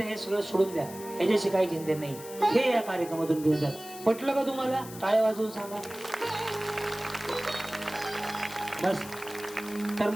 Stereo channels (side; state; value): left; noise; hiss, 15 dB below the sound